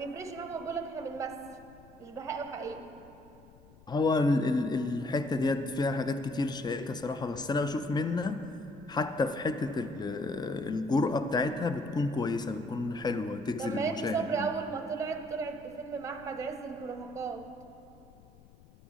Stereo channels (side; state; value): left; noise; rumble, 24 dB below the sound